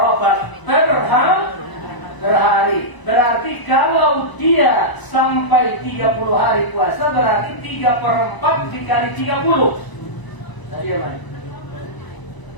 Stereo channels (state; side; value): late; right; 1.0 ms